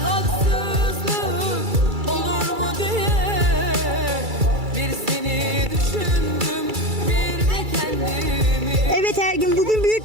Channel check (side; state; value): left; late; 2.3 ms